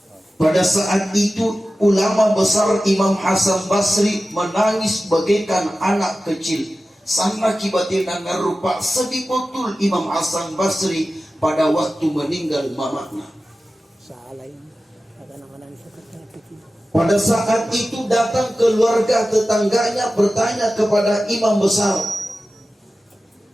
Pada saat itu ulama besar Imam Hasan Basri menangis bagaikan anak kecil. Sama kibatina ngarupa sedih betul Imam Hasan Basri pada waktu meninggal mamanya. Pada saat itu datang keluarga tetangganya bertanya kepada imam besar,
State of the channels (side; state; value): both; normal; correlation 0.95